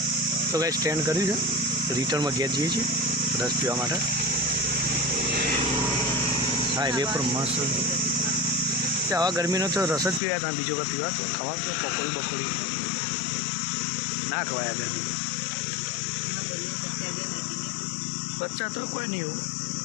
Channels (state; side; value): drops out; right; at 10.2 s